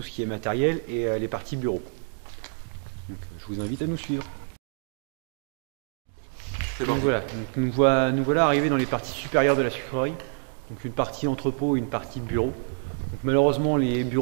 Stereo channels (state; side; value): silent; left; digital silence